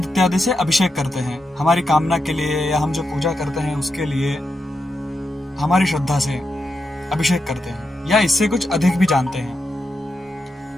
इत्यादि से अभिषेक करते हैं। हमारी कामना के लिए या हम जो पूजा करते हैं उसके लिए हमारी श्रद्धा से अभिषेक करते हैं, या इससे कुछ अधिक भी जानते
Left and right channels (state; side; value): normal; both; correlation 0.86